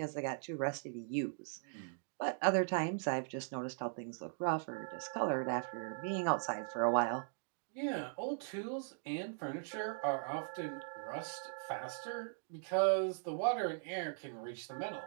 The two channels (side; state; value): left; silent; digital silence